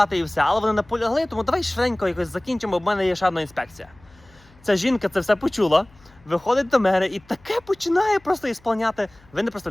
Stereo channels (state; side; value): noise; left; hum, 28 dB below the sound